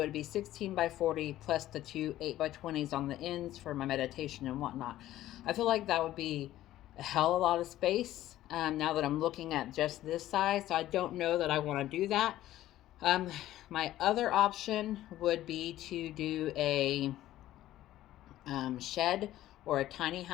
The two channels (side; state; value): right; quieter; 14.1 dB